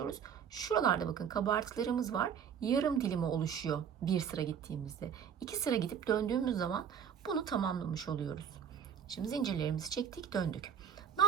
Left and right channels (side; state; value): left; quieter; 7.9 dB